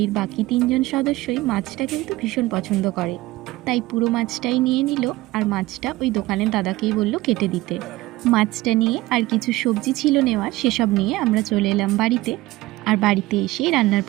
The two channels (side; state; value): left; quieter; 18.5 dB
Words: বাকি 3জন সদস্যই মাছটা কিন্তু ভীষণ পছন্দ করে, তাই পুরো মাছটাই নিয়ে নিল। আর মাছটা ওই দোকানের দাদাকেই বলল কেটে দিতে। মাছটা নিয়ে আর কিছু সবজি ছিল নেওয়ার, সেসব নিয়ে আমরা চলে এলাম বাড়িতে। আর বাড়িতে এসে রান্নার